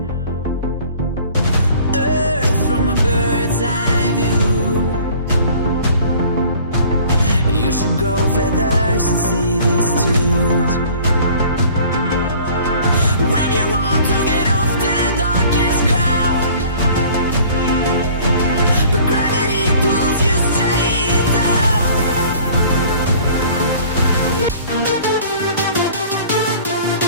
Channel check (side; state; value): both; inverted; correlation -0.49